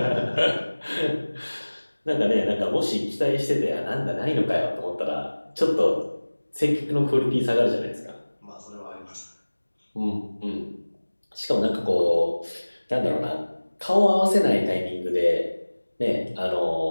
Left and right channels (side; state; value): both; inverted; correlation -1.00